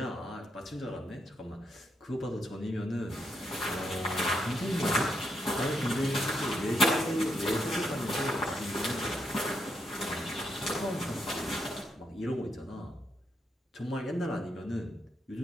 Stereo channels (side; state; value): both; normal; correlation 0.80